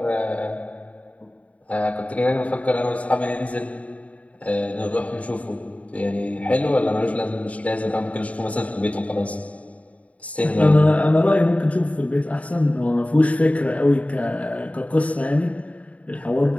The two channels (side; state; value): right; late; 0.067 ms